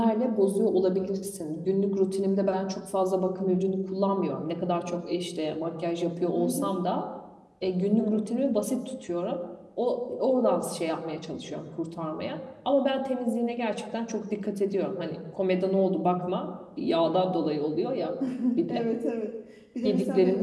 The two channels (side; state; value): both; identical; correlation 1.00